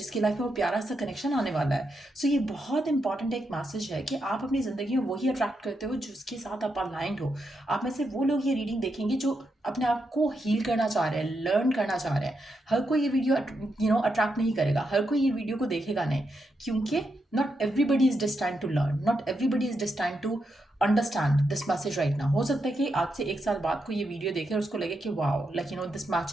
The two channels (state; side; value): normal; both; correlation 0.83